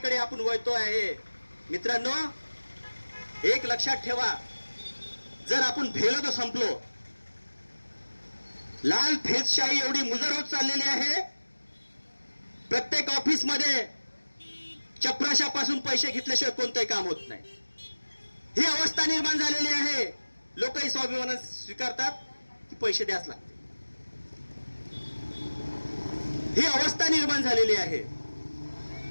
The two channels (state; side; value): inverted; both; correlation -1.00